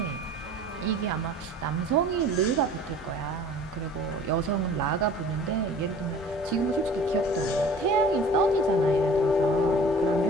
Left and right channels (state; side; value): normal; both; correlation 0.46